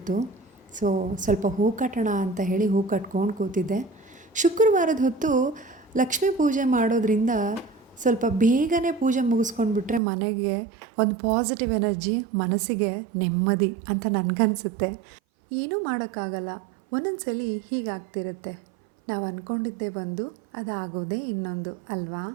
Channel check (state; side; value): drops out; left; at 10.0 s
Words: ಸೊ ಸ್ವಲ್ಪ ಹೂ ಕಟ್ಟೋಣ ಅಂತ ಹೇಳಿ ಹೂ ಕಟ್ಕೊಂಡು ಕೂತಿದ್ದೆ. ಶುಕ್ರವಾರದ ಹೊತ್ತು ಲಕ್ಷ್ಮೀ ಪೂಜೆ ಮಾಡೋದ್ರಿಂದ ಸ್ವಲ್ಪ ಬೇಗನೆ ಪೂಜೆ ಮುಗಿಸ್ಕೊಂಡ್ಬಿಟ್ರೆ ಮನೆಗೆ ಒಂದು ಪಾಸಿಟಿವ್ ಎನರ್ಜಿ, ಮನಸ್ಸಿಗೆ ನೆಮ್ಮದಿ ಅಂತ ನನಗನ್ಸುತ್ತೆ. ಏನೂ ಮಾಡೋಕ್ಕಾಗಲ್ಲ, ಒಂದೊಂದು ಸಲ ಹೀಗಾಗ್ತಿರುತ್ತೆ. ನಾವು ಅಂದ್ಕೊಂಡಿದ್ದೇ ಒಂದು, ಅದಾಗೋದೇ ಇನ್ನೊಂದು ಅಲ್ವಾ?